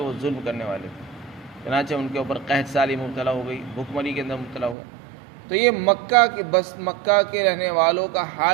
وہ ظلم کرنے والے تھے۔ چنانچہ ان کے اوپر قحط سالی مبتلا ہو گئی، بھوک مری کے اندر مبتلا ہو گئے۔ تو یہ مکہ کے رہنے والوں کا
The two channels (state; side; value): drops out; left; at 4.8 s